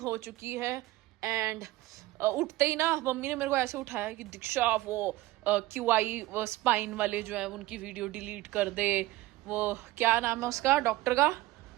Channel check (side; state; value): left; quieter; 17.9 dB